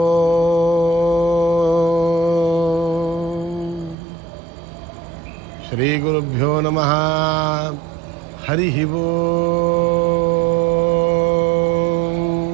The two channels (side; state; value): left; drops out; at 4.0 s